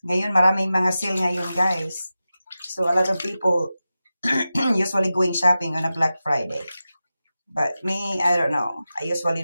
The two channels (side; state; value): both; inverted; correlation -0.93